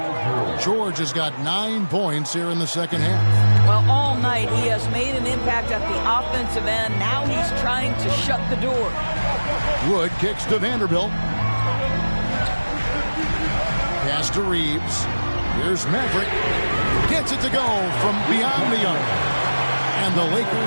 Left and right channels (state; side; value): inverted; both; correlation -1.00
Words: George has got 9 points here in the second half. Well, all night he has made an impact at the offensive end. Now he's trying to shut the door. Wood kicks to Vanderbilt. Pass to Reeves. Here's Maverick. Gets it to go from beyond the arc. And the